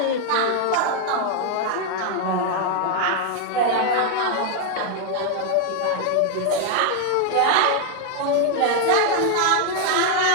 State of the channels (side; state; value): both; different; correlation 0.00